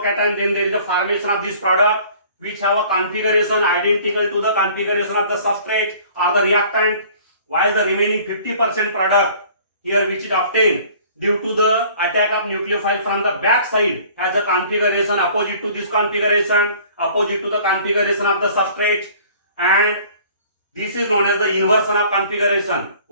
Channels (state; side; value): inverted; both; correlation -0.51